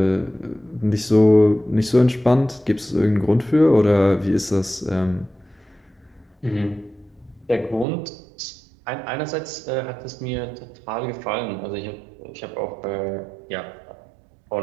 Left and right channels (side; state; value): left; drops out; at 7.9 s